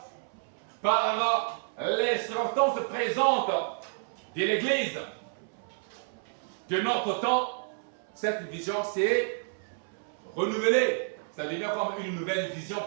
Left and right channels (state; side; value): silent; left; 58 dB below the other